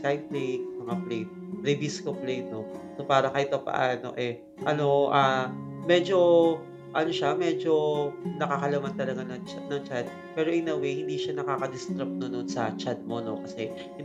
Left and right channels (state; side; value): identical; both; correlation 1.00